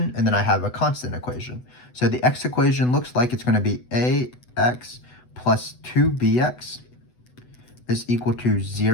and then I have a constant equation. So the x equation looks like it's going to be ax plus 2bx is equal to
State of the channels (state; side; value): late; right; 8.1 ms